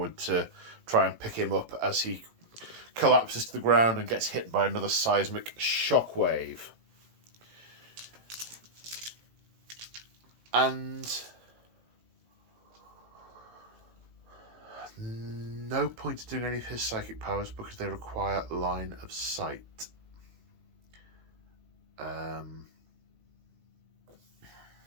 to try and pick him up as he collapses to the ground and gets hit by another seismic shockwave. And no point in doing any of his psychic powers because they require line of sight. They're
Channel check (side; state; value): left; late; 18 ms